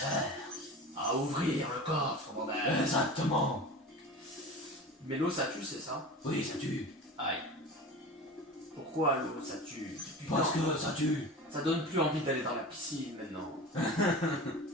À ouvrir le coffre, bordel! Exactement. Mais l'eau ça tue, c'est ça? Oui, ça tue. Aïe. Pourquoi l'eau ça tue? Parce Putain, que ça tue. ça donne plus envie d'aller dans la piscine maintenant.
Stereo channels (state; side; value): normal; both; correlation 0.33